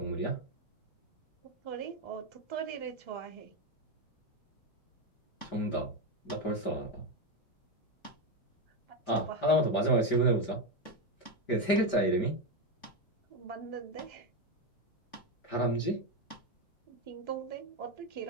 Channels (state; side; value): late; right; 5.0 ms